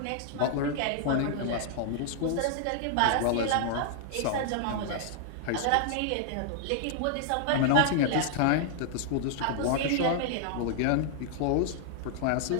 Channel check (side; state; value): both; different; correlation 0.00